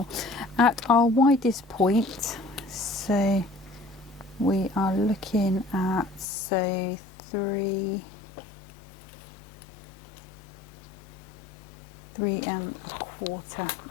at our widest point, so we are looking at, so 3 and 3/4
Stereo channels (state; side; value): drops out; right; at 6.2 s